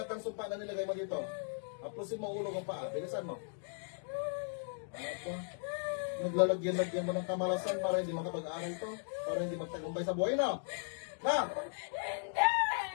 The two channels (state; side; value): silent; right; digital silence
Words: ng sumpa na nilagay mo dito. Apusin mo ulo ng paa. Bilisan mo. Ano po? Naglalagyan-lagyan mo ng kamalasan para hindi makapag-aaral to. Para hindi magtagumpay sa buhay na. Na! Hindi!